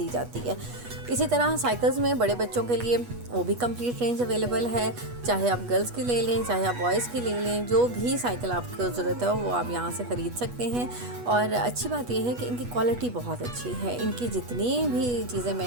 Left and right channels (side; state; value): left; late; 8.2 ms